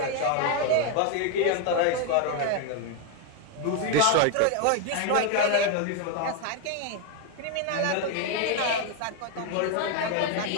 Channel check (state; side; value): different; both; correlation 0.01